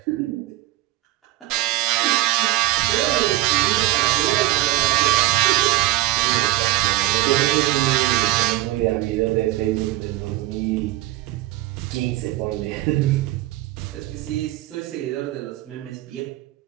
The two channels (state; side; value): quieter; left; 16.5 dB